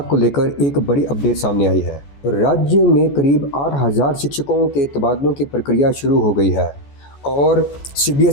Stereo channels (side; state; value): right; late; 14 ms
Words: को लेकर एक बड़ी अपडेट सामने आई है। राज्य में करीब 8,000 शिक्षकों के तबादलों की प्रक्रिया शुरू हो गई है और